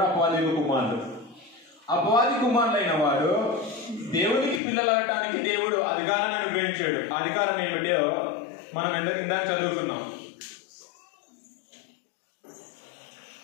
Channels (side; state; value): right; drops out; at 4.6 s